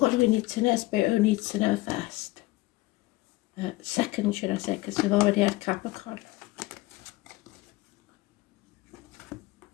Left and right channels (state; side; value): quieter; right; 19.6 dB